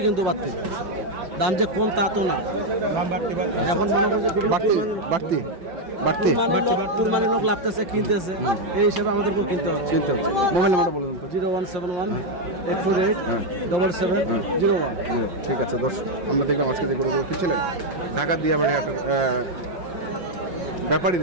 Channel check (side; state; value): left; late; 5.5 ms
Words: কিন্তু বাড়তি দাম যে কম তা তো না। এখন মনে করেন যে বাড়তি বাড়তি বাড়তি কুরবানি লোক লাগতেছে, কিনতেছে, এই হিসাবে আমাদেরকেও কিনতে হচ্ছে। চিনতে হচ্ছে। মোবাইল নাম্বারটা বলুন তো। 0171 848 হ্যাঁ। 7701। ঠিক আছে দর্শক, আমরা দেখলাম আজকে যে গরুগুলো কিনছিলেন ঢাকার দিয়াবাড়ি হাটের